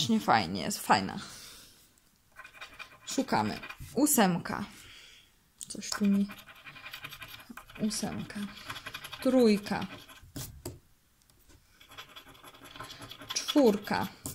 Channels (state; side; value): identical; both; correlation 1.00